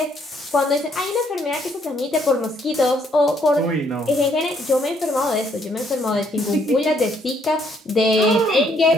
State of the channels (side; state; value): both; normal; correlation 0.69